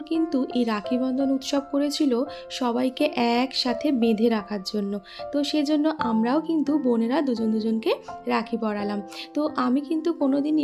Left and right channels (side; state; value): both; identical; correlation 1.00